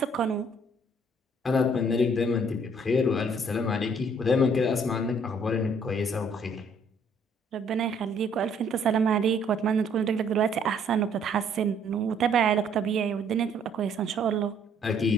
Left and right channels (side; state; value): both; normal; correlation 0.63